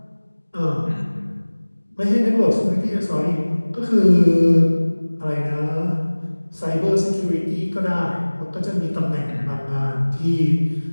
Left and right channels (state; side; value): inverted; both; correlation -1.00